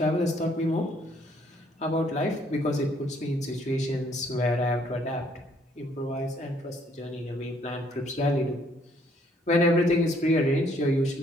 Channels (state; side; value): normal; both; correlation 0.66